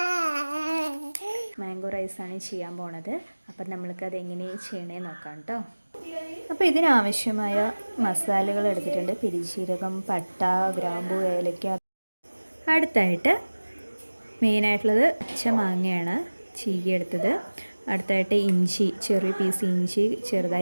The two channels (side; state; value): both; inverted; correlation -1.00